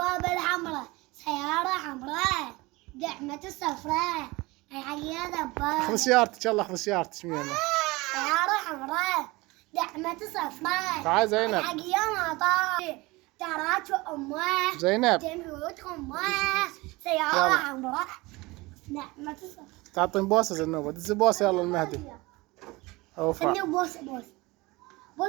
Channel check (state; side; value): quieter; left; 22.5 dB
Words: الحمراء سيارة حمراء دعمة صفراء هاي دبابة. خذ سيارتك يلا خذ سيارتك سيارة حمراء دعمة صفراء. تعال زينب. الحق يا مطار تراك امه زينب تموت امه سيارة حمراء دعمة صفراء. تعطين بوسة زنوبة دز بوسة يلا المهدي. اوفا خلني